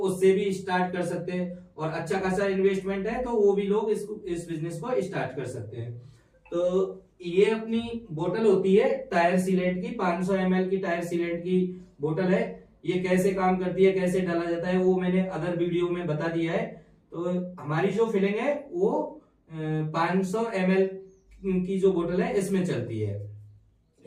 भी स्टार्ट कर सकते हैं, और अच्छा खासा इन्वेस्टमेंट है तो वो भी लोग इस बिजनेस को स्टार्ट कर सकते हैं। तो ये अपनी बोतल होती है टायर सीलेंट की, 500 ml की टायर सीलेंट की बोतल है। ये कैसे काम करती है, कैसे डाला जाता है, वो मैंने अदर वीडियो में बता दिया है। तो हमारी जो फिलिंग है वो 500 ml की जो बोतल है इसमें चलती है।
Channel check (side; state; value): both; identical; correlation 1.00